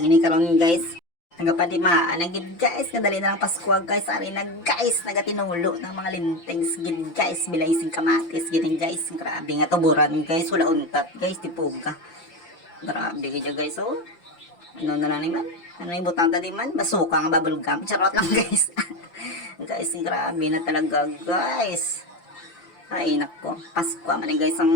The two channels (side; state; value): right; late; 5.8 ms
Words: karon guys. Nagapadimaan na gid guys, kadali na lang Pasko guys, ari na guys, nagatinulo ng mga lintings gid guys, bilay sing kamatis gini guys. Grabe nga tuburan guys, wala untat guys, tipuga. Grabe gid guys, oh. Ano na lang ni man? Ano yung butang tadi man? Basuka nga bubblegum. Charot lang guys. Guys, grabe na talaga guys. Ay nako, Pasko man guys